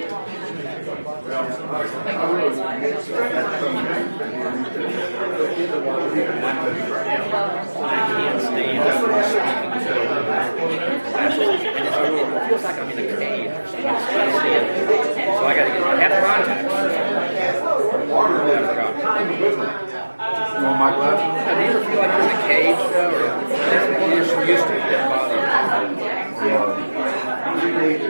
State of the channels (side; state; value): both; inverted; correlation -1.00